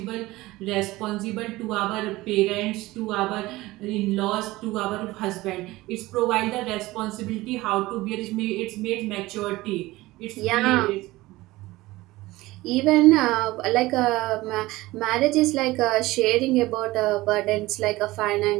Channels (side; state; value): left; quieter; 19.0 dB